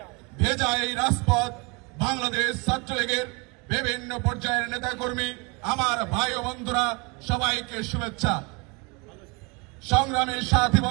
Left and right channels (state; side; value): quieter; left; 29.3 dB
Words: ভেজা এই রাজপথ বাংলাদেশ ছাত্রলীগের বিভিন্ন পর্যায়ের নেতাকর্মী আমার ভাই ও বন্ধুরা সবাইকে শুভেচ্ছা। সংগ্রামী সাথী